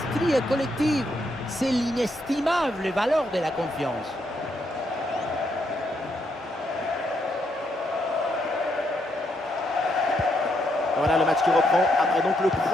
collective. C'est l'inestimable valeur de la confiance. Voilà le match qui reprend après donc le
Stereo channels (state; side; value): normal; both; correlation 0.77